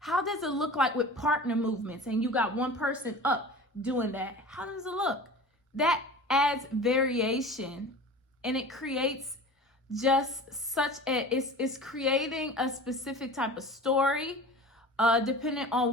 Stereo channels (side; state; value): both; normal; correlation 0.38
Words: does it look like with partner movements and you got one person up doing that? How does it look? That adds variation, and it creates just it's creating a specific type of story, depending on